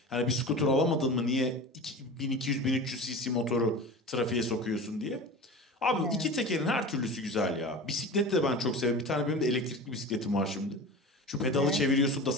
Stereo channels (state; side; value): normal; both; correlation 0.32